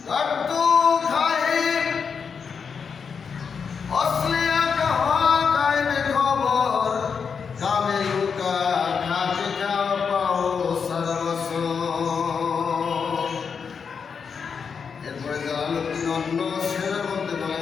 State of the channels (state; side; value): quieter; right; 6.1 dB